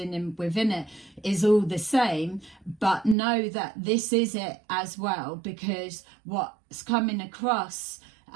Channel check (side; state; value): left; drops out; at 3.2 s